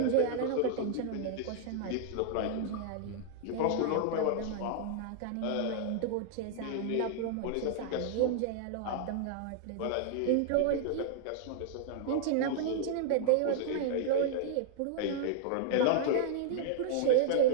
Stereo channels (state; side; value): different; both; correlation -0.01